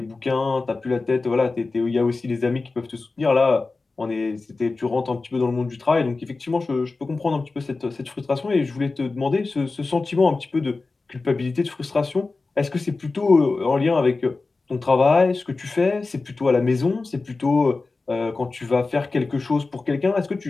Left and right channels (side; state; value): right; quieter; 3.7 dB